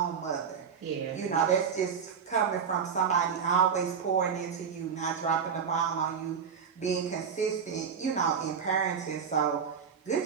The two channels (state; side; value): quieter; left; 6.8 dB